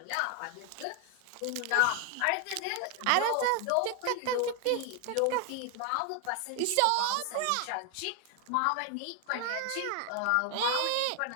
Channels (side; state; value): both; different; correlation 0.01